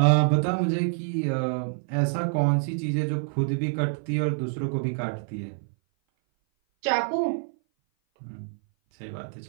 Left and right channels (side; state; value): left; silent; 57 dB below the other